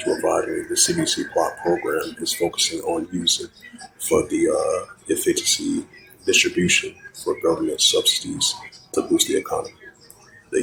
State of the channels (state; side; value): identical; both; correlation 1.00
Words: reviving the CDC plot program is focusing on using for the efficiency distribution for government subsidies to boost the economy. The